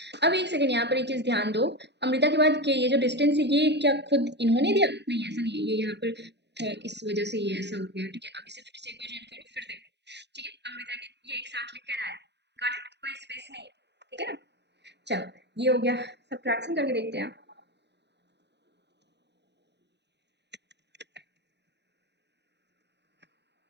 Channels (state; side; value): late; left; 0.50 ms